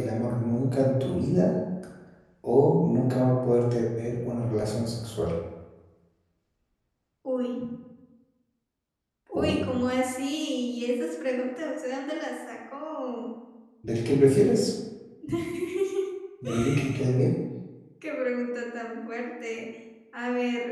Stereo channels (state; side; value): identical; both; correlation 1.00